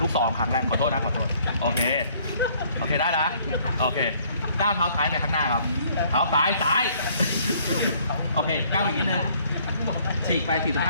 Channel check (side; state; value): both; inverted; correlation -0.61